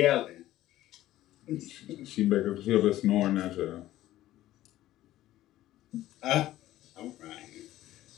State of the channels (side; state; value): right; quieter; 14.7 dB